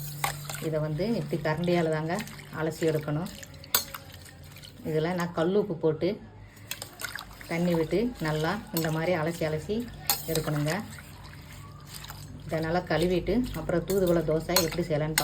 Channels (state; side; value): identical; both; correlation 1.00